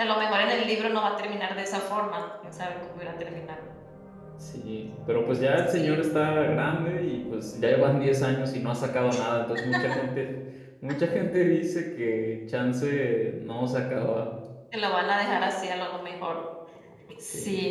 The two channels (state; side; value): identical; both; correlation 1.00